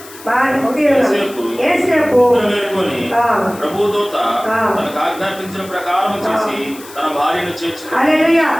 ఏసేపు ప్రభు దూత తనకు ఆజ్ఞాపించిన ప్రకారం చేసి తన భార్యను చేర్చుకుని. హల్లెలూయా.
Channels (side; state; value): left; noise; hiss, 18 dB below the sound